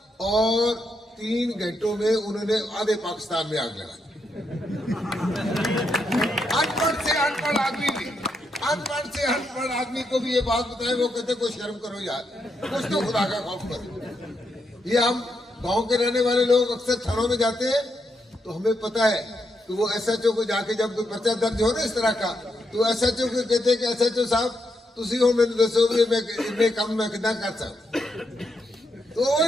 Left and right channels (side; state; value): both; normal; correlation 0.81